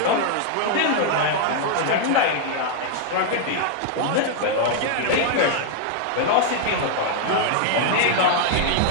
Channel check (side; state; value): both; different; correlation -0.01